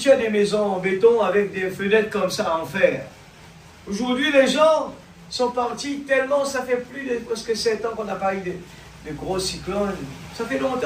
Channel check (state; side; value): identical; both; correlation 1.00